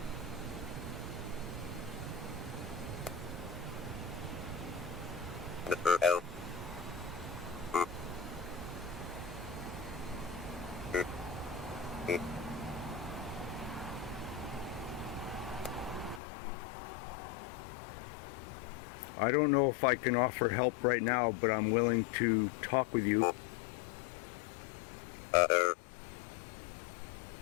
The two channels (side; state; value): right; drops out; at 16.2 s